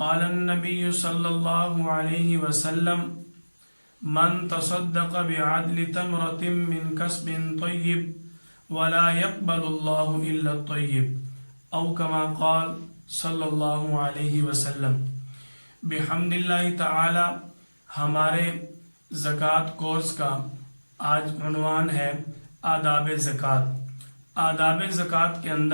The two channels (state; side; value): inverted; both; correlation -1.00